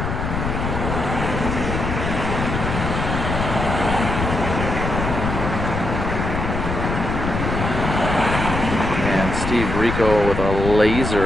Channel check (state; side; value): noise; left; rumble, 3 dB below the sound